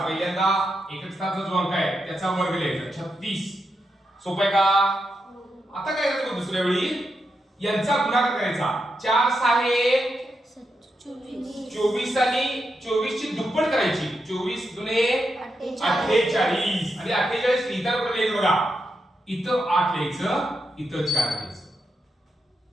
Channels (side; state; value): both; normal; correlation 0.85